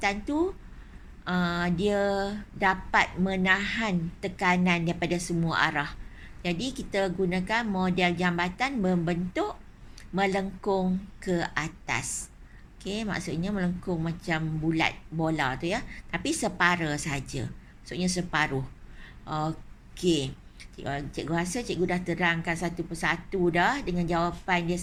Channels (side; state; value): both; identical; correlation 1.00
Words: tu dia dapat menahan tekanan daripada semua arah. Jadi kita gunakan model jambatan membentuk melengkung ke atas. Okey, maksudnya melengkung macam bulat bola tu ya. Tapi separa saja. Maksudnya separuh. Okey. Cikgu rasa cikgu dah terangkan satu persatu dah dengan jawapan dia